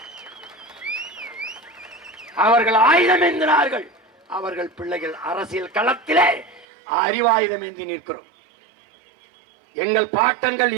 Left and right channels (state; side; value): drops out; left; at 6.7 s